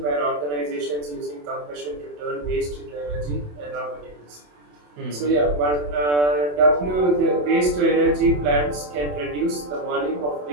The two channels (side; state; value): left; late; 27 ms